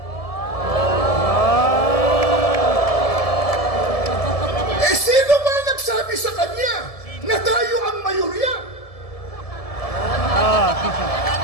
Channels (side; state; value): right; late; 1.7 ms